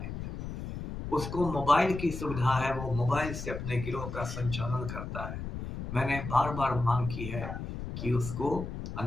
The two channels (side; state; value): left; noise; rumble, 7 dB below the sound